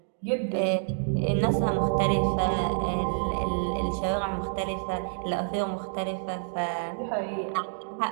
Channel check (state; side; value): silent; left; digital silence